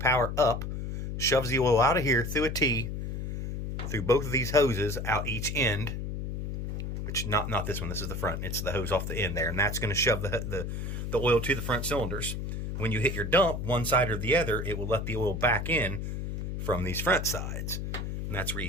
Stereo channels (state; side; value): noise; left; hum, 4 dB below the sound